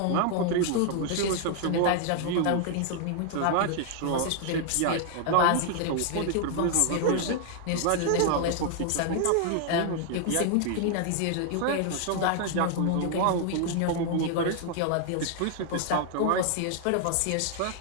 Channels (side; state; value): both; different; correlation 0.00